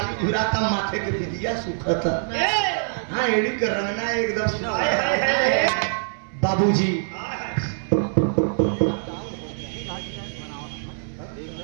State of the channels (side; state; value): left; silent; 63 dB below the other